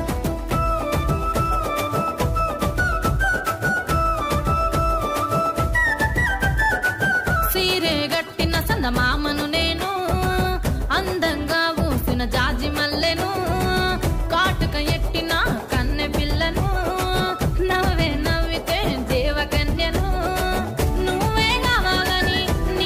మామను నేను అందంగా ఊసిన జాజి మల్లెను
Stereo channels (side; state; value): both; identical; correlation 1.00